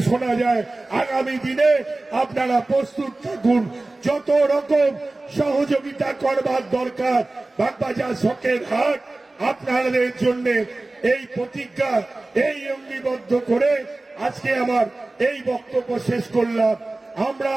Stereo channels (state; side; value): quieter; left; 3.0 dB